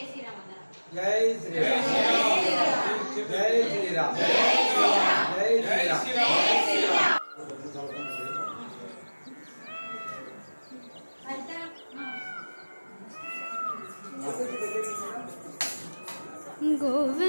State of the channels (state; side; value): inverted; both; correlation -1.00